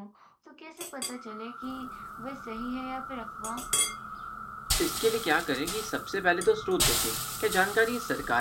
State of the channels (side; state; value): both; identical; correlation 1.00